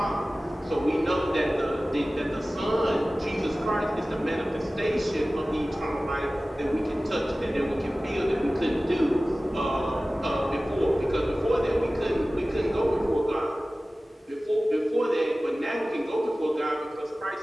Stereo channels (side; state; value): both; normal; correlation 0.97